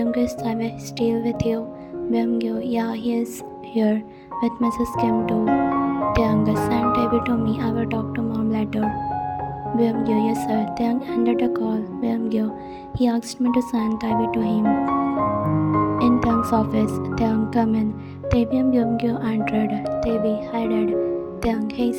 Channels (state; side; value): identical; both; correlation 1.00